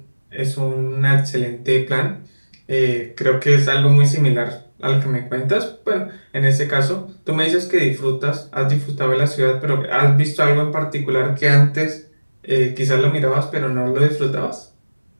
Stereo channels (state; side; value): inverted; both; correlation -1.00